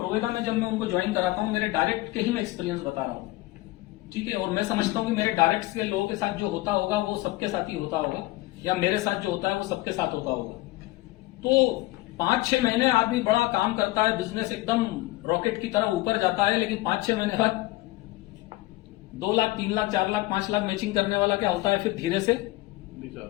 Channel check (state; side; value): quieter; right; 19.2 dB